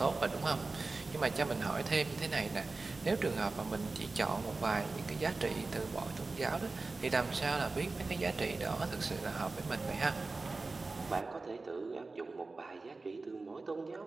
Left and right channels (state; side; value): quieter; left; 3.6 dB